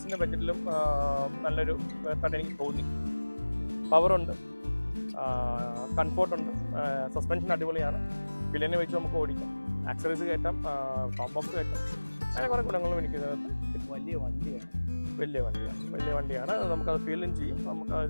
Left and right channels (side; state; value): both; inverted; correlation -1.00